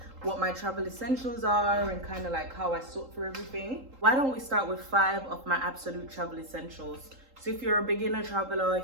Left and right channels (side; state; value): left; late; 3.8 ms